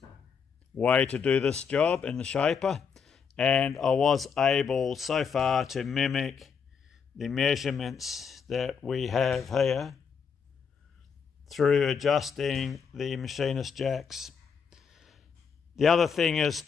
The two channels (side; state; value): right; quieter; 6.3 dB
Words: way to do this job in the shaper, and I was able so far to mimic the measurements that we have here through adjusting the machinist jacks. The other thing is